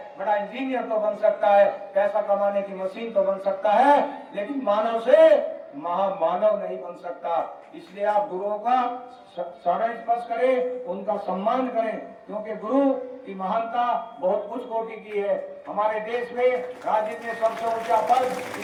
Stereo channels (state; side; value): identical; both; correlation 1.00